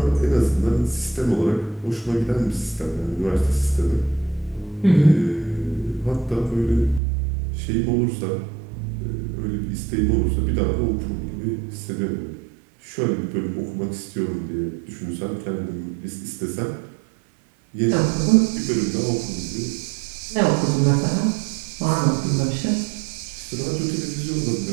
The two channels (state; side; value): drops out; left; at 7.0 s